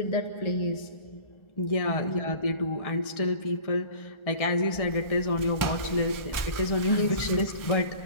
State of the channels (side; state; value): right; late; 1.4 ms